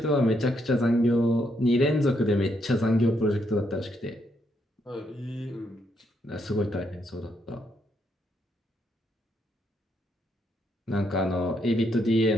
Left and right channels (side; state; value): both; normal; correlation 0.76